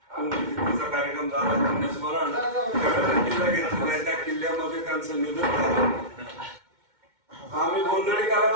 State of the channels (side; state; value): left; late; 2.2 ms